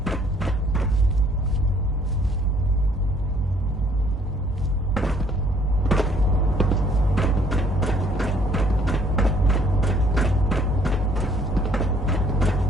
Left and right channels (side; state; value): both; normal; correlation 0.62